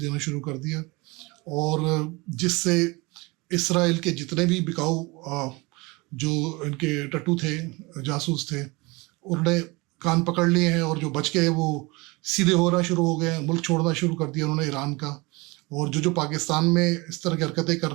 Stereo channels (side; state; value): left; quieter; 25.1 dB